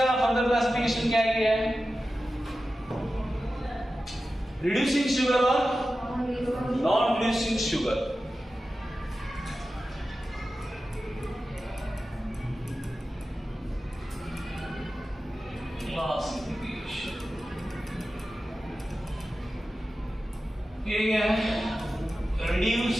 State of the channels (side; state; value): both; normal; correlation 0.93